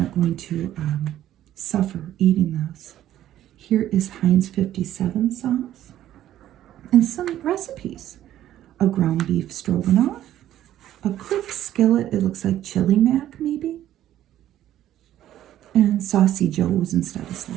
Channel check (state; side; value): quieter; left; 12.5 dB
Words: going to suffer eating this? Here is Heinz 57 sauce and some recipes. A ground beef stroganoff, a quick skillet, it looks like chili mac maybe, and Saucy Joe's instead of